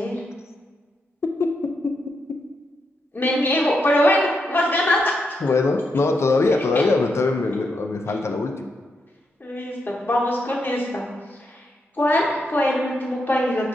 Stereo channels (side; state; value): both; normal; correlation 0.82